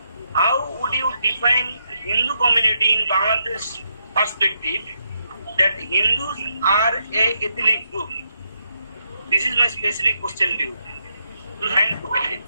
How would you define Hindu community in Bangladesh perspective that Hindus are a ethnic group? This is my specific question to you. Thank you.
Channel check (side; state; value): both; inverted; correlation -0.79